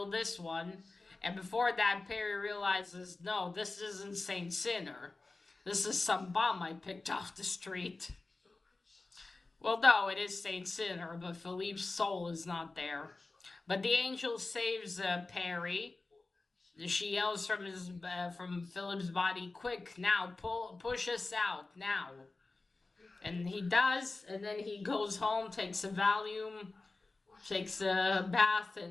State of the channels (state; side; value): quieter; right; 3.4 dB